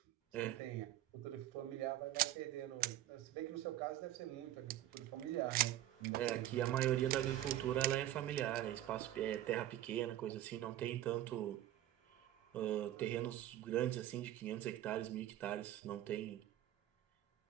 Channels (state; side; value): quieter; left; 13.4 dB